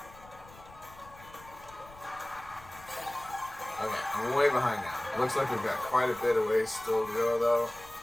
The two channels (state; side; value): noise; left; rumble, 21 dB below the sound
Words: Okay, I'm way behind now. Looks like we've got quite a bit of ways still to go though.